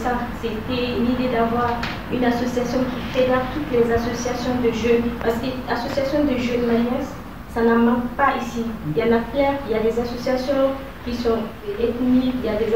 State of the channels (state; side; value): identical; both; correlation 1.00